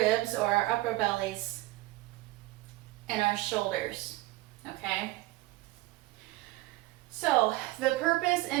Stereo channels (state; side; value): quieter; left; 19.3 dB